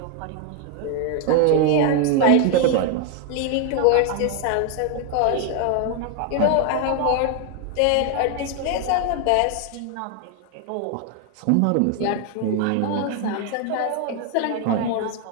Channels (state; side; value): different; both; correlation 0.00